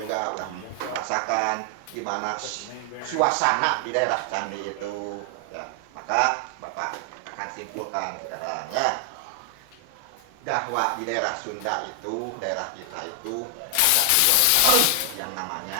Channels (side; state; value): both; different; correlation 0.00